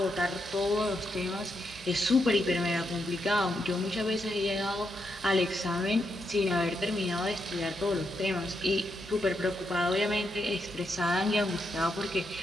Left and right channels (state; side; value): normal; both; correlation 0.82